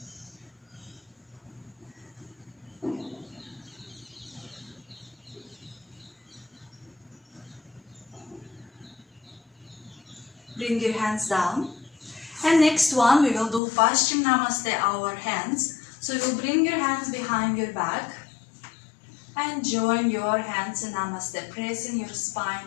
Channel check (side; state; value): right; drops out; at 13.6 s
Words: Bring your hands down. And next one, we will do Paschim Namaste, our hands. So you will bring your hands behind your back and join your hands in Namaste, pressing your